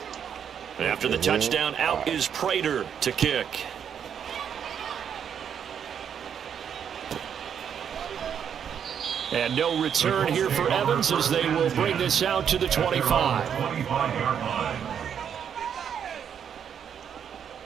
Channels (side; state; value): left; quieter; 8.2 dB